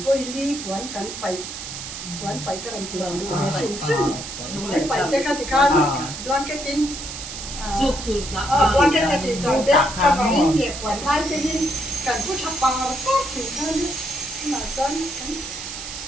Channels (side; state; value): right; noise; hiss, 8 dB below the sound